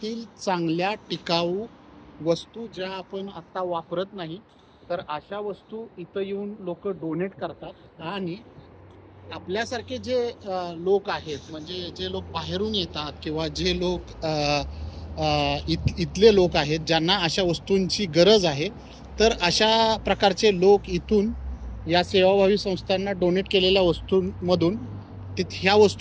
चांगल्या टिकाऊ वस्तू ज्या आपण आत्ता वापरत नाही, तर अशा वस्तू इथं येऊन लोक डोनेट करतात. आणि आपल्यासारखे जे लोक आहेत, म्हणजे जे लोक बाहेरून येतात किंवा जे लोक इथले लोक आहेत ज्यांना अशा वस्तूंची गरज आहे, तर अशा प्रकारचे लोक इथून या सेवाभावी संस्थांना डोनेट केलेल्या वस्तूंमधून ह्या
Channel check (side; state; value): both; identical; correlation 1.00